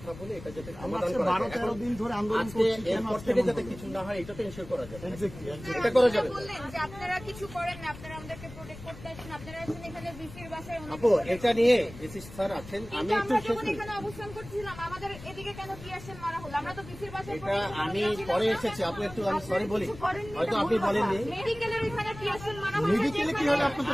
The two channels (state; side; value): noise; left; rumble, 15 dB below the sound